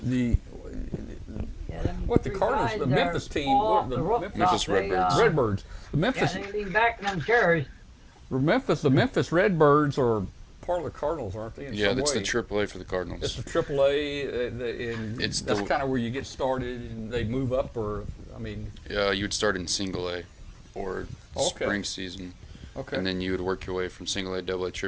Yeah, them what the three Cardinals, guys the there Memphis team, fall what off the the rooftop. Memphis They, Redbirds. Redbirds. The Yeah, Memphis they lean back in them chairs. the Memphis Redbirds are part of the Cardinals, aren't they? In Yeah, some that's way? the AAA for the It's Cardinals. the AAA, and It's that's the- kind of where you get started, and they move up, or I mean, Yeah, you would start in single A or Okay. spring season, okay, and then you would work your way from single A, double A,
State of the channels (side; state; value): both; identical; correlation 1.00